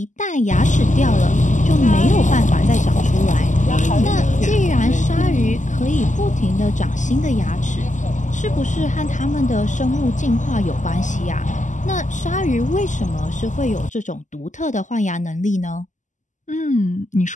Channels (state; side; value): late; right; 0.36 ms